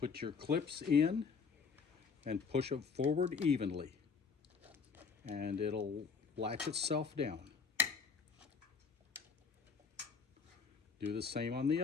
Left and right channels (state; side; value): quieter; right; 5.4 dB